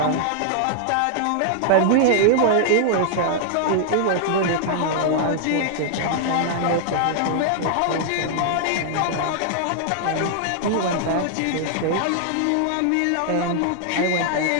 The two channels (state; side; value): different; both; correlation -0.01